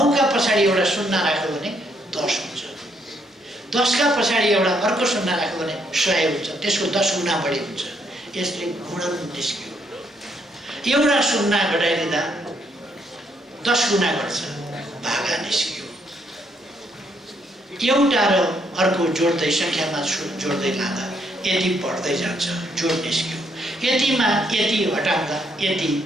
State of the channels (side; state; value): both; normal; correlation 0.73